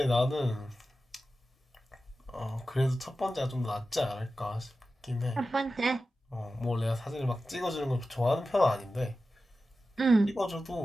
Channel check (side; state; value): both; normal; correlation 0.93